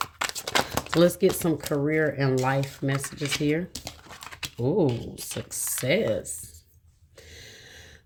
So let's get some career and life messages here. Ooh, success.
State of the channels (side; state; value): both; identical; correlation 1.00